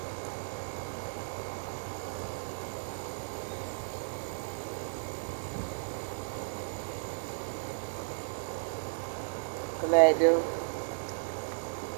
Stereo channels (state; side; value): silent; left; digital silence